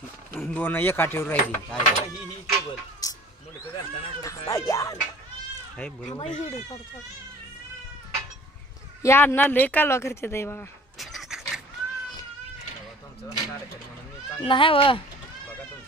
दोन एका ठेवून राहिली ही केबल या ना लय कालवा करते ताई बघा नाही व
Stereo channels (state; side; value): normal; both; correlation 0.48